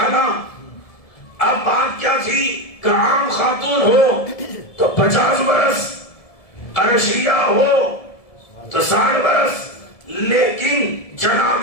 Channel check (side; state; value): right; late; 1.7 ms